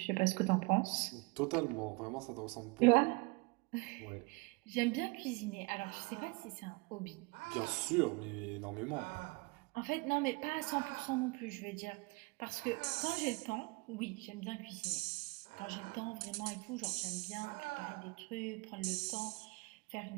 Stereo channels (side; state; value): left; quieter; 26.6 dB